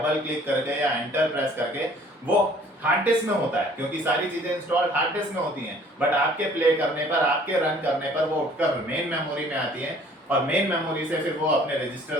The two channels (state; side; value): normal; both; correlation 0.55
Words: क्लिक करके या एंटर प्रेस करके, वो हार्ड डिस्क में होता है, क्योंकि सारी चीजें इंस्टॉल हार्ड डिस्क में होती हैं। बट आपके प्ले करने पर, आपके रन करने पर वो उठकर मेन मेमोरी में आती है, और मेन मेमोरी से फिर वो अपने